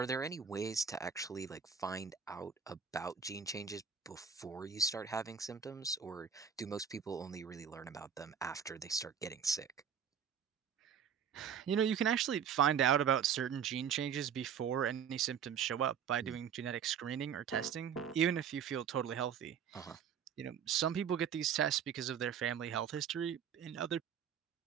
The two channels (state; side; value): quieter; left; 7.6 dB